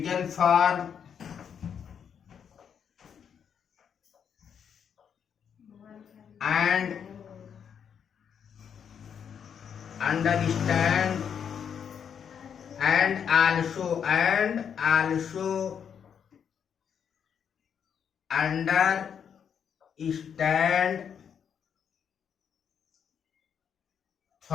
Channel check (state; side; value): quieter; right; 7.8 dB